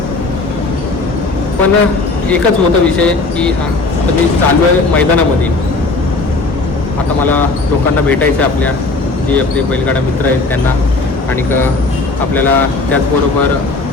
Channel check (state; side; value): quieter; right; 3.5 dB